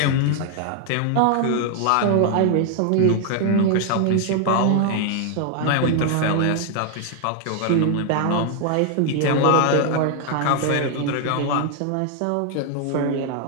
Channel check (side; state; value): both; different; correlation 0.00